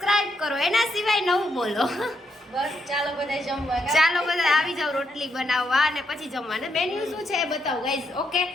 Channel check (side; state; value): both; normal; correlation 0.79